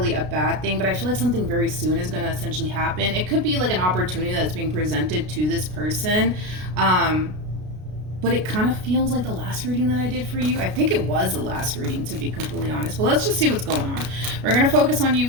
a bad thing, but I feel like something very soon is going to essentially happen. It could be like an opportunity that's being presented to this person. But it kind of feels like the last reading that I did for you. I think it was the last reading, to be completely honest. But let's just see what's going on. We're going to focus on you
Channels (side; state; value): left; late; 33 ms